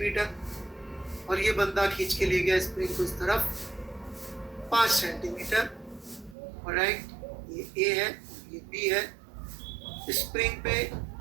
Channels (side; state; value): left; drops out; at 6.4 s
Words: और ये बंदा खींच के ले गया स्प्रिंग को इस तरफ 5 सेंटीमीटर। ऑलराइट, ये A है, ये बी है, स्प्रिंग पे